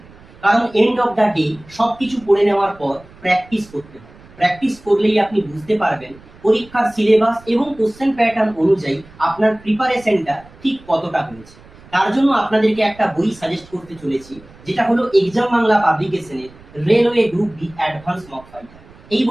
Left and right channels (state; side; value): noise; right; rumble, 23 dB below the sound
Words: কারণ এন্ড অফ দ্য ডে সবকিছু পড়ে নেওয়ার পর প্র্যাকটিস করতে হবে। প্র্যাকটিস করলেই আপনি বুঝতে পারবেন পরীক্ষার সিলেবাস এবং কোশ্চেন প্যাটার্ন অনুযায়ী আপনার প্রিপারেশনটা ঠিক কতটা হয়েছে। তার জন্য আপনাদেরকে একটা বই সাজেস্ট করতে চলেছি, যেটা হলো এক্সাম বাংলা পাবলিকেশনের railway group D advance mock fighter. এই